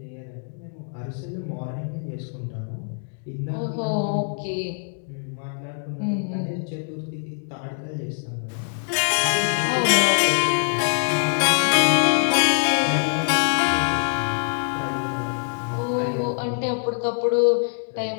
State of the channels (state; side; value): silent; right; 63 dB below the other